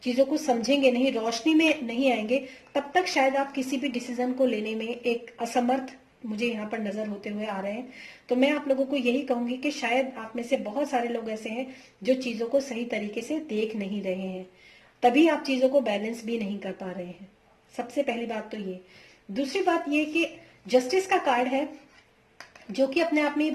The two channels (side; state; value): both; identical; correlation 1.00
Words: चीजों को समझेंगे नहीं, रोशनी में नहीं आएंगे, तब तक शायद आप किसी भी डिसीजन को लेने में एक असमर्थ मुझे यहाँ पर नजर होते हुए आ रहे हैं। तो मैं आप लोगों को यही कहूंगी कि शायद आप में से बहुत सारे लोग ऐसे हैं जो चीजों को सही तरीके से देख नहीं रहे हैं, तभी आप चीजों को बैलेंस भी नहीं कर पा रहे हैं। सबसे पहली बात तो ये। दूसरी बात ये कि जस्टिस का कार्ड है जो कि अपने आप में ये